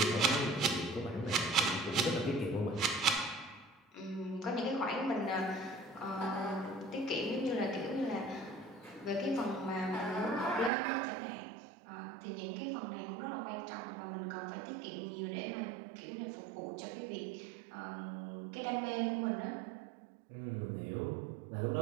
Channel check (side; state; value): left; drops out; at 10.7 s